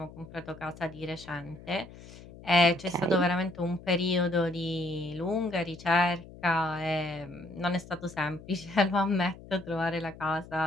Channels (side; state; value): left; noise; hum, 18 dB below the sound